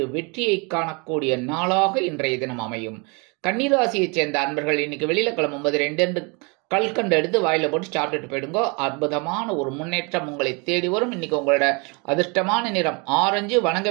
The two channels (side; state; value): left; quieter; 31.2 dB